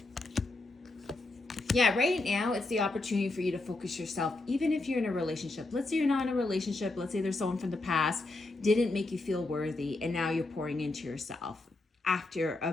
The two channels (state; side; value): quieter; right; 3.1 dB